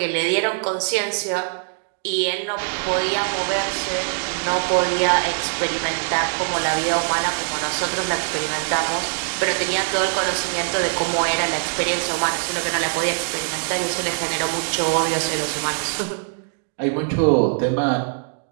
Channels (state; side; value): silent; left; digital silence